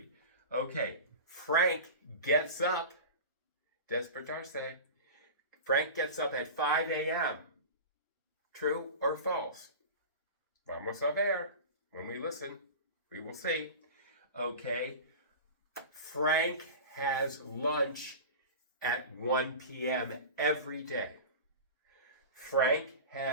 Okay, Frank gets up, despertarse. Frank gets up at 5 a.m. True or false? Vamos a ver. When we listen, we will see. Okay, Frank has lunch at 1 p.m. every day. Frank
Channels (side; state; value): both; inverted; correlation -0.32